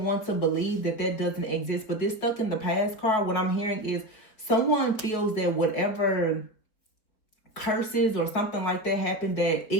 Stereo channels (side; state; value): right; late; 4.6 ms